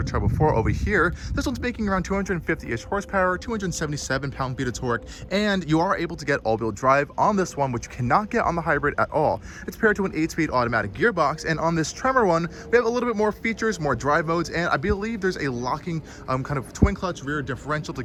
Turbo 4 over here. This one's making around 250-ish horsepower, 277 pound-feet of torque, and you are able to get all-wheel drive on this one, which you cannot get on the hybrid at all. It's paired to an 8-speed automatic gearbox, and on this Tremor one, we have a little bit more features, more drive modes, and I believe there's a locking kind of twin-clutch rear differential to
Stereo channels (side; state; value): both; identical; correlation 1.00